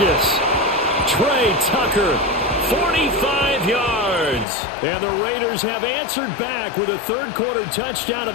Trey Tucker, 45 yards. And the Raiders have answered back with a third-quarter touchdown of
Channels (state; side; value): drops out; right; at 4.5 s